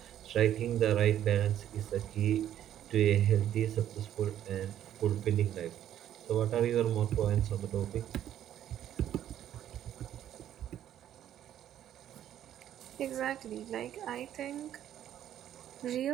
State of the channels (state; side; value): quieter; left; 11.1 dB